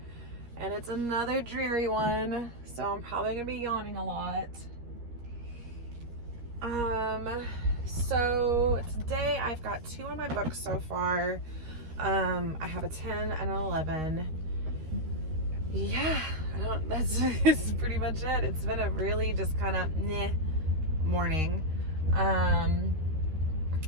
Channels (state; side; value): late; left; 13 ms